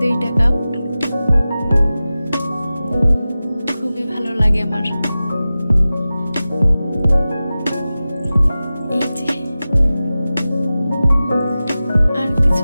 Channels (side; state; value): both; inverted; correlation -0.96